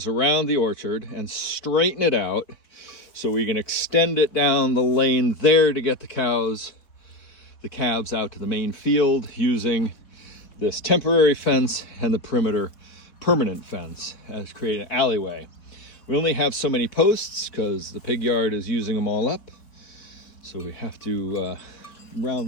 around the orchard and straighten it out so we can extend it down the lane there to get the calves, the calves out to the main field using this temporary fence and the perimeter permanent fence as create an alleyway. We only have so many posts because the pig yard is using them all up. So we have to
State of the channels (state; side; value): late; right; 4.3 ms